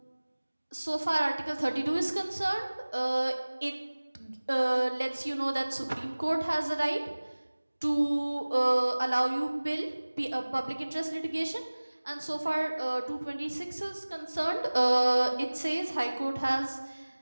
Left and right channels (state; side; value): inverted; both; correlation -1.00